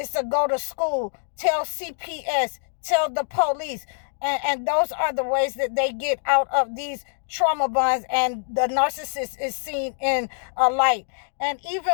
to go to school, tell CPS, tell the police. And those are the ways that they get out of these trauma bonds, and the narcissist is seen in a light. And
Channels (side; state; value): right; silent; digital silence